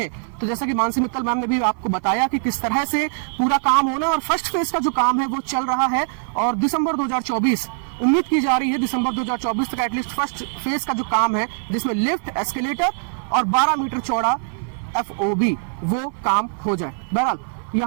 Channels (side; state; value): left; silent; 57 dB below the other